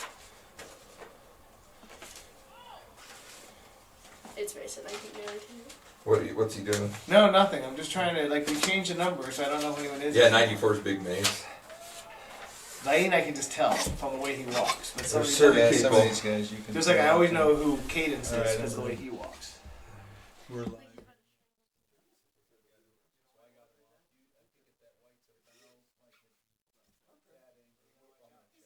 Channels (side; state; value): both; identical; correlation 1.00